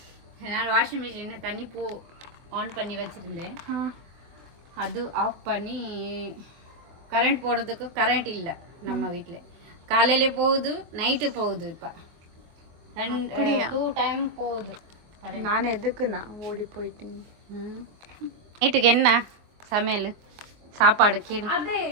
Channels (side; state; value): left; late; 24 ms